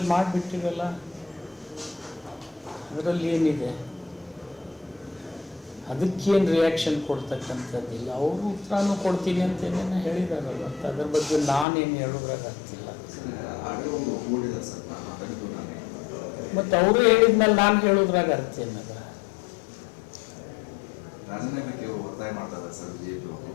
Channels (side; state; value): right; drops out; at 11.7 s